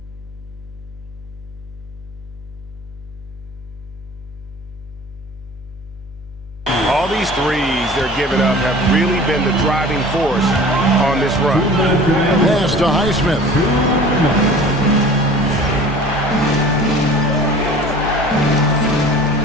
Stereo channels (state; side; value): noise; left; hum, 19 dB below the sound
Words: All these threes they're giving up have really been the driving force on this run. Pass to Highsmith.